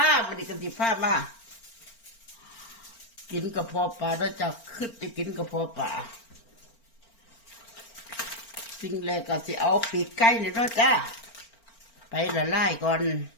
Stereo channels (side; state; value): right; late; 4.4 ms